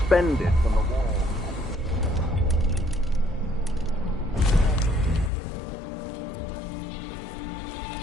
from the wall. Oh well.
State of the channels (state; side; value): drops out; right; at 5.3 s